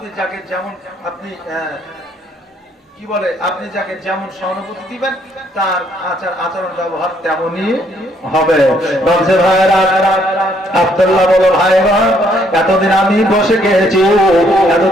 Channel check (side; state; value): both; normal; correlation 0.68